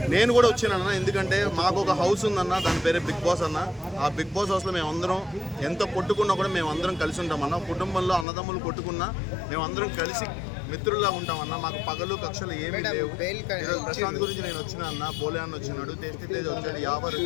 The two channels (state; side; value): drops out; right; at 8.2 s